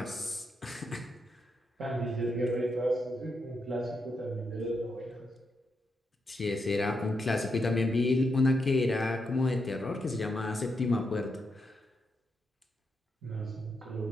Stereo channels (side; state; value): both; normal; correlation 0.83